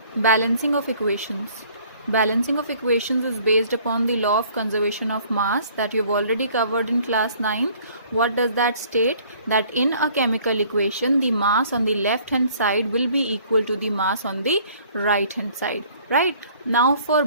Balancing of equations. Balancing of equations is based upon the law of conservation of mass that you've already covered in class 9th. What does that state? That in a chemical equation, the mass on the left hand side will be equal to the mass on the right hand side. Right? Now for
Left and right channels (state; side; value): inverted; both; correlation -0.56